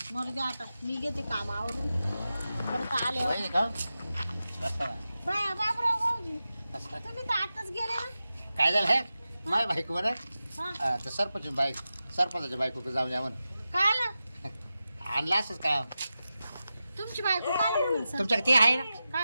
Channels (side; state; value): both; inverted; correlation -0.93